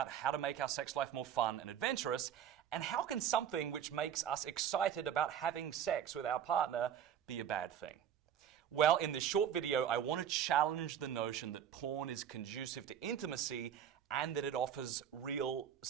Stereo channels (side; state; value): left; quieter; 9.2 dB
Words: how to make our sex life more fun and adventurous, and how can something which makes us excited about having sex with our partner be a bad thing? Well, in this short video, I want to challenge the notion that porn is conducive to intimacy and that it offers real